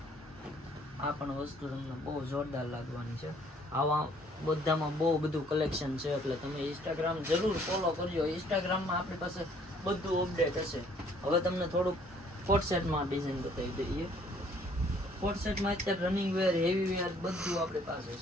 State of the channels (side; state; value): both; normal; correlation 0.61